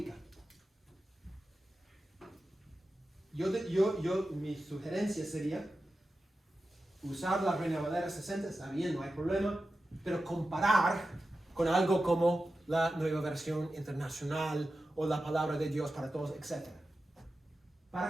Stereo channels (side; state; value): both; normal; correlation 0.92